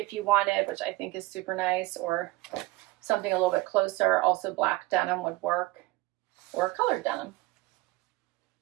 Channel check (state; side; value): quieter; left; 20.1 dB